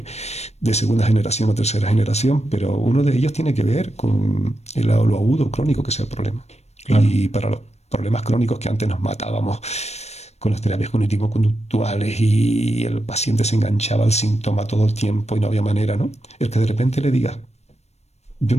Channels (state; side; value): late; right; 0.31 ms